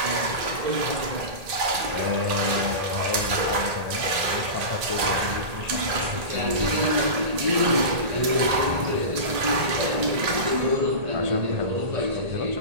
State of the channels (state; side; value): late; left; 1.8 ms